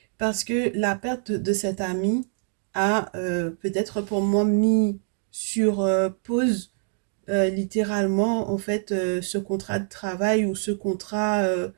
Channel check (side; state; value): left; silent; 57 dB below the other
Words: parce que la perte de cet ami a peut-être pour moi mis sur pause littéralement, en fait, ce contrat de travail ou ce contrat,